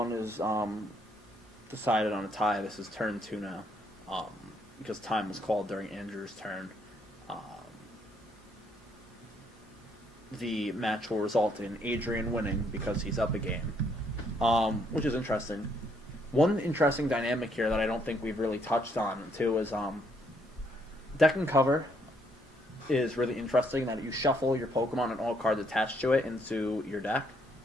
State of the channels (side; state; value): both; normal; correlation 0.71